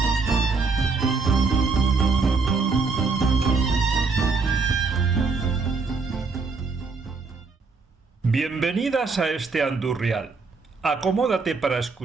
Bienvenidas a este Andurrial. Acomódate para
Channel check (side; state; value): left; quieter; 4.4 dB